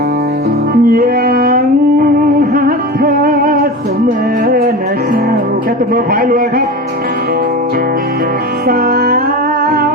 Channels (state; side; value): normal; both; correlation 0.29